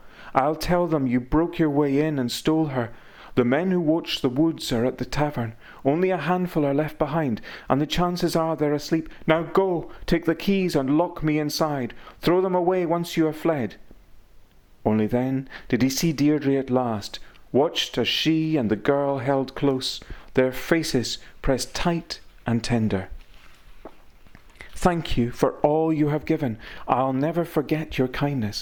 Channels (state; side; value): identical; both; correlation 1.00